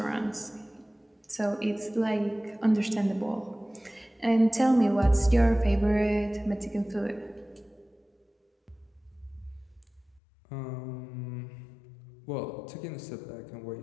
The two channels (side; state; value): right; drops out; at 10.2 s